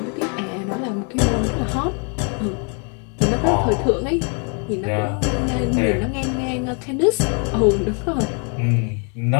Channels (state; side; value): quieter; right; 38.7 dB